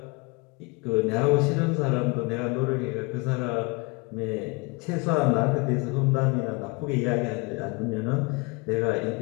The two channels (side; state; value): right; quieter; 28.2 dB